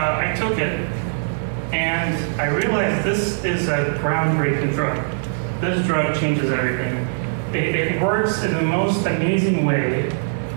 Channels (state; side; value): silent; left; 65 dB below the other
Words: took it, and I realized this is a groundbreaking drug. This drug changes everything. It works in the most amazing way.